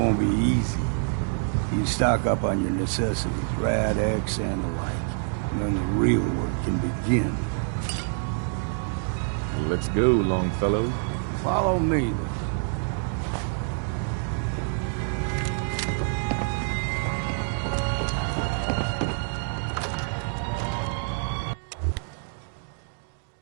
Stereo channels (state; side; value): silent; left; 61 dB below the other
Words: be easy. You stock up on your necessities, Rad X and the like, and then the real work can begin. Let's go, Longfellow. Follow me, then.